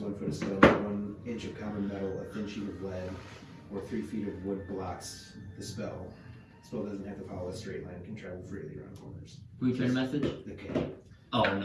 foot of stone, 1 inch of common metal, a thin sheet of lead, or 3 feet of wood blocks the spell. The spell doesn't have to follow a straight line, can travel freely around corners. Who you trying to message? okay. Oh,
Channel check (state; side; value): identical; both; correlation 1.00